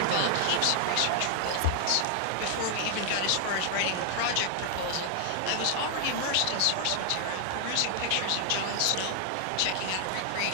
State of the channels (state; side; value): different; both; correlation 0.00